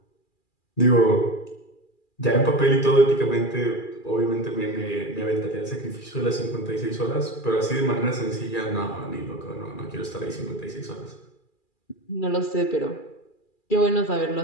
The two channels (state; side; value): late; right; 2.4 ms